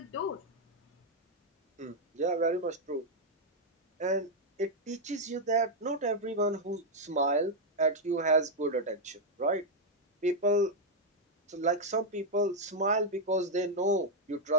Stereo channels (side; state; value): both; normal; correlation -0.01